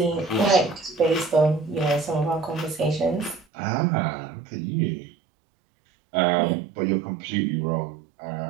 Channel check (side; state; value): left; drops out; at 3.5 s